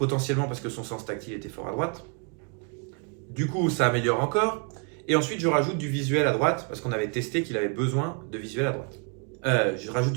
parce que son sens tactile était fort à droite. Du coup ça améliore encore, et ensuite je rajoute du visuel à droite parce qu'on avait testé qu'il avait besoin de visuel à droite. Je rajoute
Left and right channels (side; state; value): left; quieter; 36.6 dB